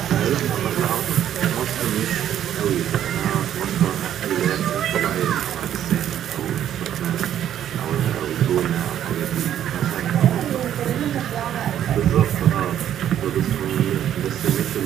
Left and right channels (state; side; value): quieter; left; 10.7 dB